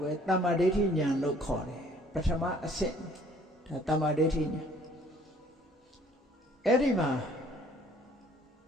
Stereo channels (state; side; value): normal; both; correlation 0.58